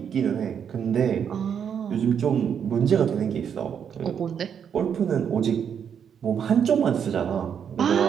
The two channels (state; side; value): quieter; left; 7.9 dB